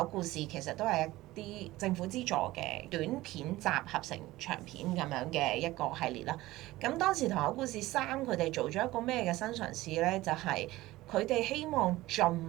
故事》其實都係一啲政府資助嘅短片集合成長片咁樣嘅一個系列啦。咁當時《唐口故事3》佢哋做咗一個咩嘅新嘗試咧？就係佢哋希望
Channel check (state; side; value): quieter; left; 17.8 dB